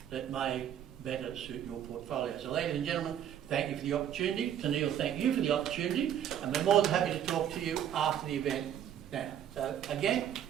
that may better suit your portfolio. So ladies and gentlemen, thank you for the opportunity. Tennealle, thank you for the opportunity, and we're more than happy to talk to you after the event now. So again,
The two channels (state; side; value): quieter; left; 10.0 dB